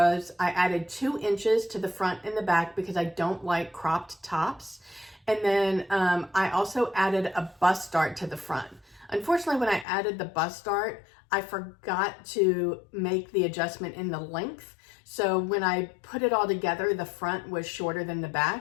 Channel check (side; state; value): right; drops out; at 9.9 s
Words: I added 2 inches to the front and the back, because I don't like cropped tops. And then I also added a bust dart to the front. Unfortunately, when I added the bust dart, I forgot to make the adjustment in the length. So when I put it all together, the front was shorter than the